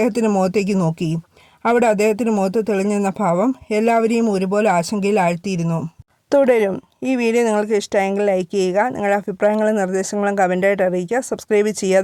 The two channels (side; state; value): both; identical; correlation 1.00